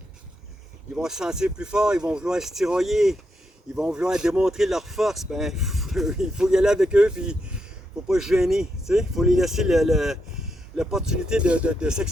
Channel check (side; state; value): both; normal; correlation 0.82